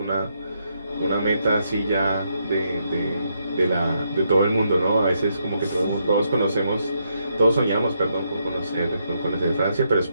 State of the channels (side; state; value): both; inverted; correlation -0.78